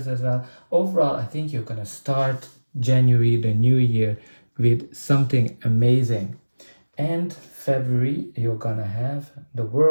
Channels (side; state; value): both; inverted; correlation -1.00